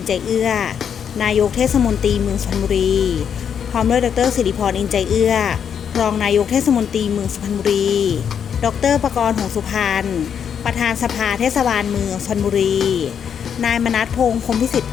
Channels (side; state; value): right; quieter; 7.8 dB